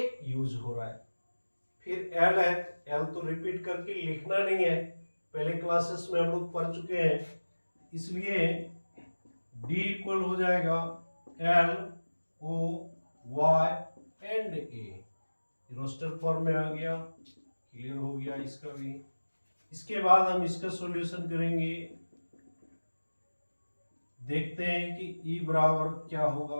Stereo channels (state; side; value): inverted; both; correlation -1.00